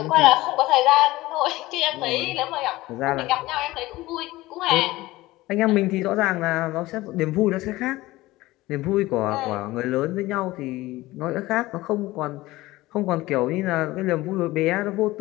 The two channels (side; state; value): right; quieter; 18.5 dB